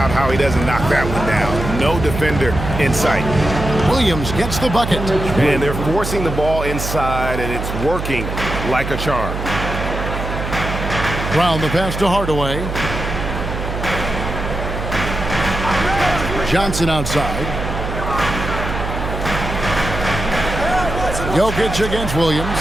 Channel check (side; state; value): right; noise; hum, 5 dB below the sound